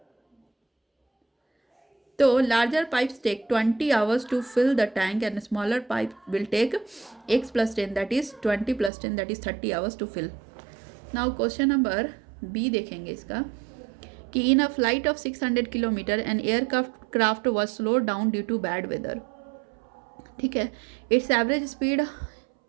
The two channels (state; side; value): drops out; left; at 8.9 s